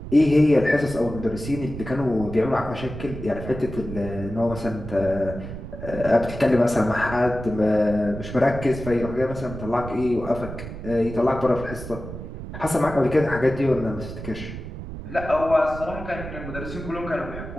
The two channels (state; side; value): noise; right; rumble, 10 dB below the sound